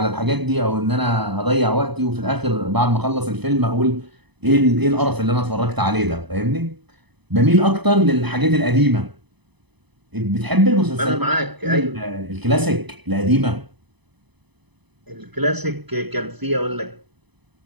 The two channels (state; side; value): late; left; 0.99 ms